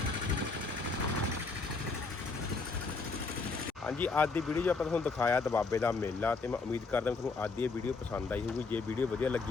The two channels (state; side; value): quieter; right; 4.2 dB